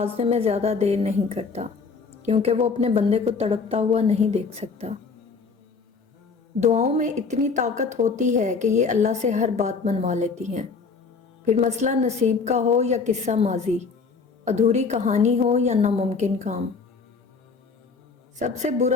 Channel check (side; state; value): right; quieter; 4.9 dB